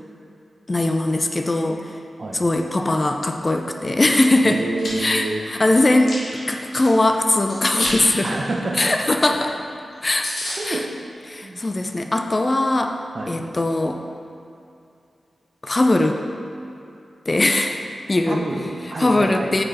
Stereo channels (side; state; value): both; normal; correlation 0.97